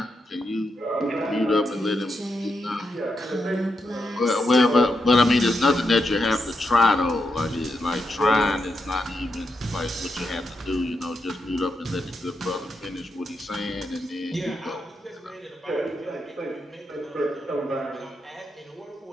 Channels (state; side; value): normal; both; correlation 0.84